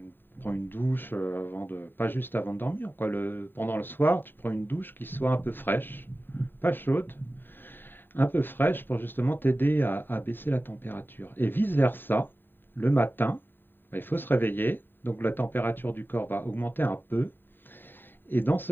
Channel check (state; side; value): late; right; 0.095 ms